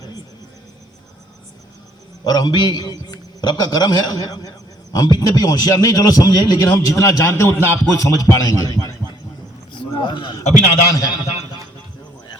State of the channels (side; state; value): both; normal; correlation 0.64